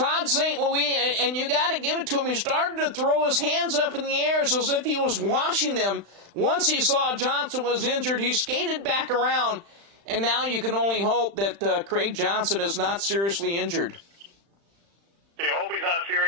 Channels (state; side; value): late; left; 35 ms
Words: St. Louis, and you got to give it to him, he started to throw his hands up in the air as if he was washing them. Once he saw Johnson was injured, he skated back around, And now you can only hope that Craig Johnson is not seriously injured. You hope he's not